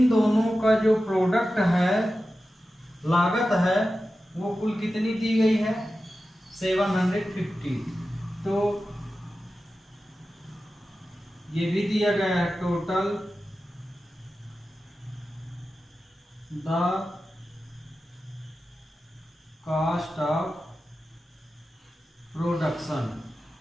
दोनों का जो प्रोडक्ट है, लागत है, वो कुल कितनी दी गई है, 750। तो ये भी दिया गया है, total the cost of production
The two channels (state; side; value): normal; both; correlation 0.93